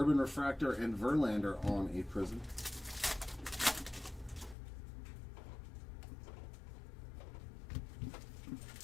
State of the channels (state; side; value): drops out; right; at 4.5 s